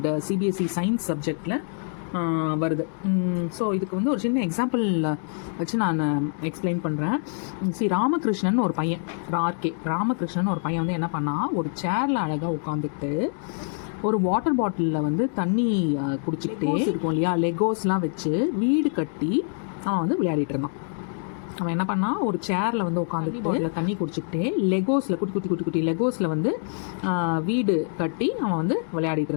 சிபிஎஸ்சி சயின்ஸ் சப்ஜெக்டில் வருது. ஸோ இதுக்கு வந்து ஒரு சின்ன எக்ஸாம்பிள் வச்சு நான் எக்ஸ்பிளைன் பண்ணுறேன். ராமகிருஷ்ணன் ஒரு பையன், ராமகிருஷ்ணன் ஒரு பையன் வந்து என்ன பண்ணால், ஒரு சேரில் அழகாக உட்காந்துக்கிட்டு ஒரு வாட்டர் பாட்டிலில் வந்து தண்ணி குடிச்சிக்கிட்டே இருக்கும் இல்லையா, லெகோஸ்லாம் வச்சு வீடு கட்டி அவன் வந்து விளையாடிட்டு இருந்தான். அவன் என்ன பண்ணால், ஒரு சேரில் வந்து உட்காந்து பாட்டில் தண்ணி குடிச்சிக்கிட்டே லெகோஸில் குட்டி லெகோஸில் வந்து வீடு கட்டி அவன் வந்து விளையாடிட்டு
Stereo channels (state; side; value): silent; right; 58 dB below the other